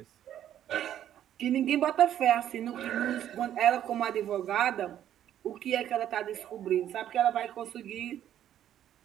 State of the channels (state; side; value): quieter; left; 11.0 dB